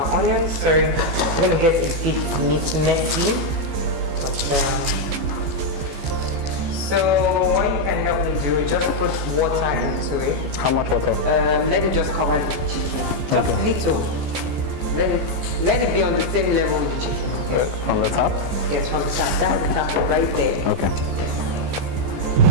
onions. Sorry, I'm going to get a bit messy. But, so what you can help me do, just put water into it. How much water? Let it just cover the chicken. Just little. Let it be on the same level with the chicken. From the top? Yes, from the top. That's the top right there. Okay.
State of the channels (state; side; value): late; left; 14 ms